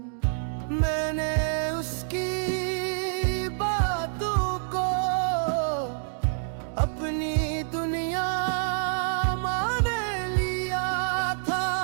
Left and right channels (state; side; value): silent; left; digital silence